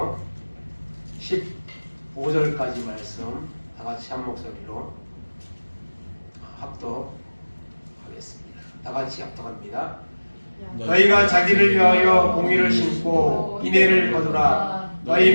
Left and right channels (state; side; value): inverted; both; correlation -1.00